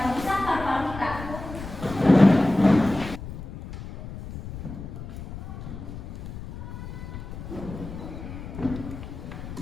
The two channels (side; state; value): left; noise; rumble, 10 dB below the sound